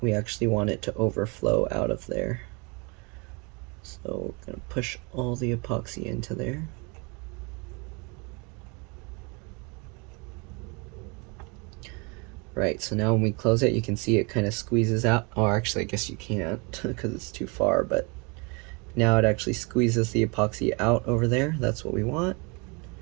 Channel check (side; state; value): left; quieter; 30.5 dB